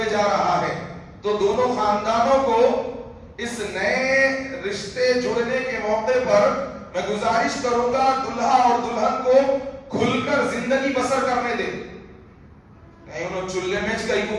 جا رہا ہے تو دونوں خاندانوں کو اس نئے رشتے جڑنے کے موقع پر میں گزارش کروں گا دلہا اور دلہن کو کھل کر زندگی بسر کرنے دیں. نہیں انہوں چلے میں کہیں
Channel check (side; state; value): both; identical; correlation 1.00